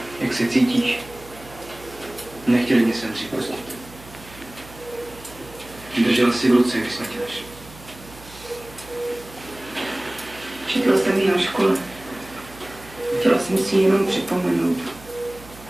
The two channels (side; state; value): right; noise; hum, 19 dB below the sound